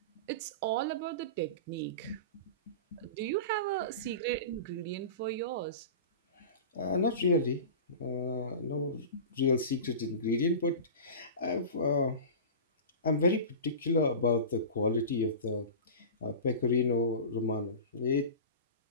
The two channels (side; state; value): both; inverted; correlation -0.31